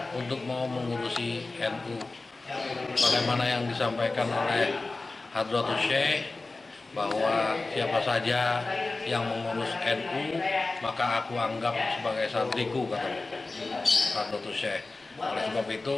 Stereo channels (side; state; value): right; quieter; 3.4 dB